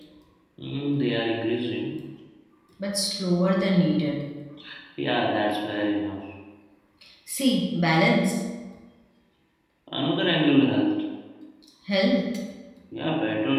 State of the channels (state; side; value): identical; both; correlation 1.00